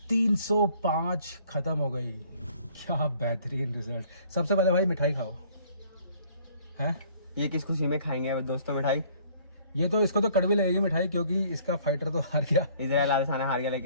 305 खत्म हो गई। क्या बेहतरीन रिजल्ट। सबसे पहले भाई मिठाई खाओ। हैं ये किस खुशी में खाएंगे दोस्तों मिठाई? ये तो इसको तो कड़वी लगेगी मिठाई, क्योंकि इसका फाइटर तो हार गया। इजराइल आदेसाना हार गया,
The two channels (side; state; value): both; inverted; correlation -0.57